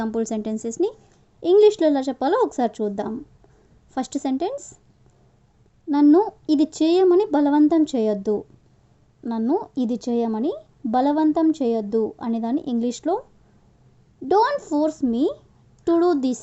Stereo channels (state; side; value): identical; both; correlation 1.00